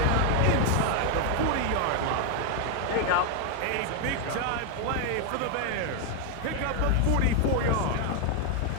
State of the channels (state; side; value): different; both; correlation 0.01